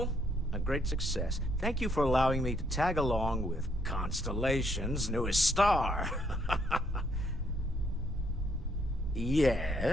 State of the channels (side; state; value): both; normal; correlation 0.71